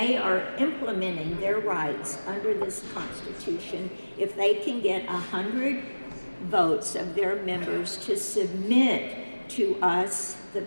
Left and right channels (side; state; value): both; inverted; correlation -1.00